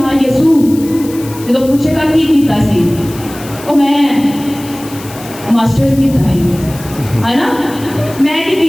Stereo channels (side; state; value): left; noise; hiss, 17 dB below the sound